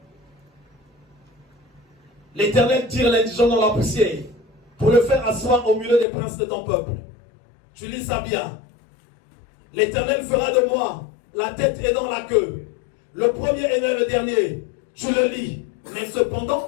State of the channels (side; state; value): right; drops out; at 6.1 s